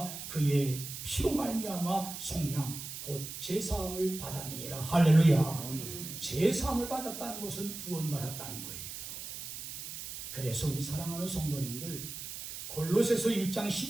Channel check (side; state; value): right; noise; hiss, 9 dB below the sound